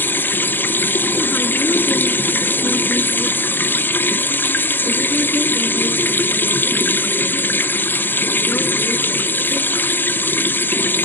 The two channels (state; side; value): late; right; 0.095 ms